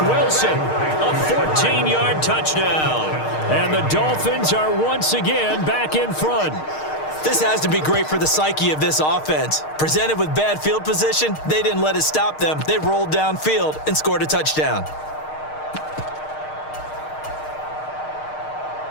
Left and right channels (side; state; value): right; late; 6.5 ms